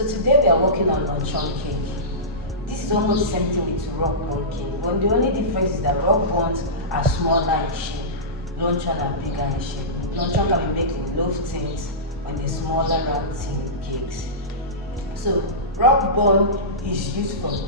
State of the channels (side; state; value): both; normal; correlation -0.19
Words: today we are working on luncheon cake. This is almost the same thing with rock bun cake, but the only difference is that rock buns are smaller in shape, luncheon are bigger in shape. Luncheon can be made in loaf tins on the smaller round tin cakes. So rock bun is used for